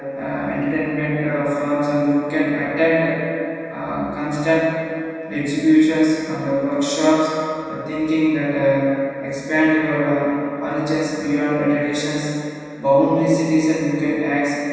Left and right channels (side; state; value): both; identical; correlation 1.00